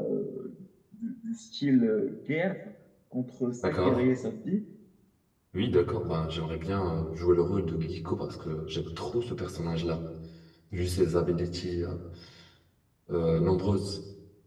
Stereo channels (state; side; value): identical; both; correlation 1.00